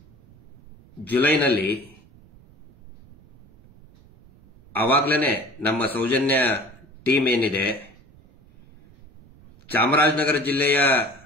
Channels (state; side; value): noise; right; rumble, 25 dB below the sound